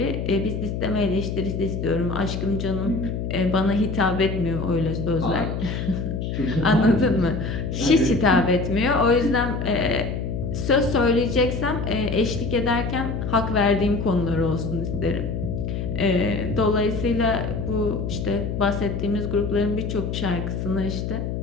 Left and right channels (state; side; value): noise; left; hum, 3 dB below the sound